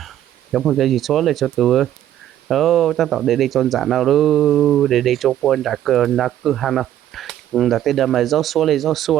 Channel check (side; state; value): left; quieter; 11.8 dB